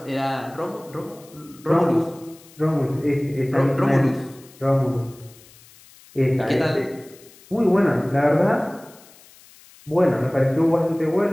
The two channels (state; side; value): noise; left; hiss, 25 dB below the sound